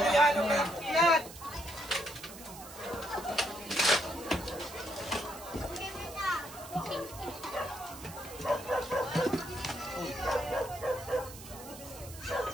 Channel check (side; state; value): right; noise; hiss, 15 dB below the sound